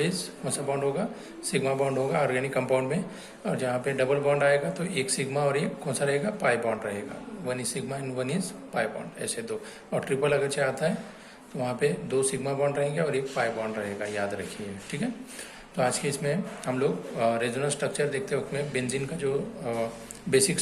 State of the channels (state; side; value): identical; both; correlation 1.00